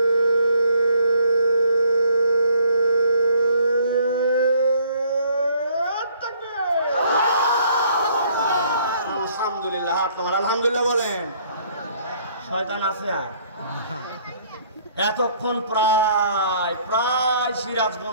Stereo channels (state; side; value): inverted; both; correlation -0.62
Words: আলহামদুলিল্লাহ। তোমার আলহামদুলিল্লাহ বলেন। শয়তান আছে আর এতক্ষণ প্রায় প্রায়